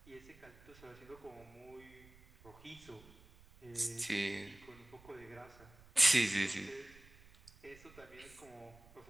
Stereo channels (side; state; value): right; noise; rumble, 23 dB below the sound